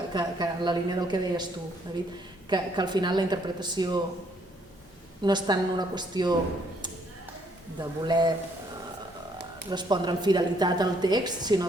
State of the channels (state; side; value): normal; both; correlation 0.68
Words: la línia del que deies tu, David, que al final la interpretació no és tant una qüestió de voler respondre amb fidelitat al text,